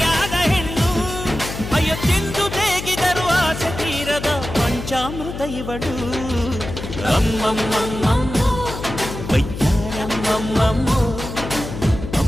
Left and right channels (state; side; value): noise; left; hum, 8 dB below the sound